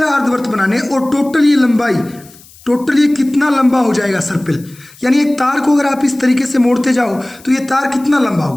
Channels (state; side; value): noise; left; hiss, 24 dB below the sound